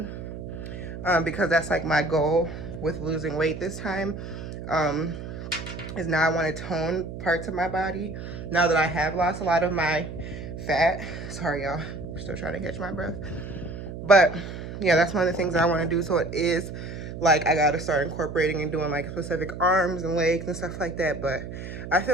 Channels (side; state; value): right; noise; hum, 9 dB below the sound